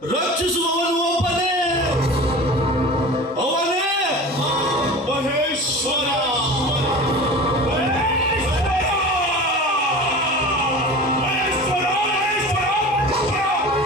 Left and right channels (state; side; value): normal; both; correlation 0.35